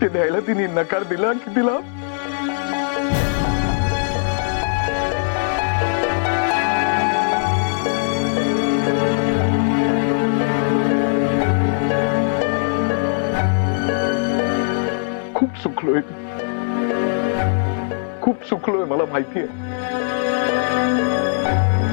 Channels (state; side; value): silent; right; 66 dB below the other